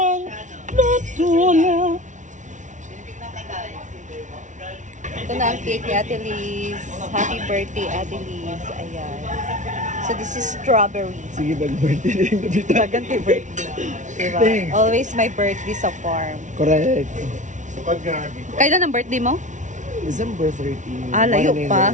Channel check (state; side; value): late; left; 0.36 ms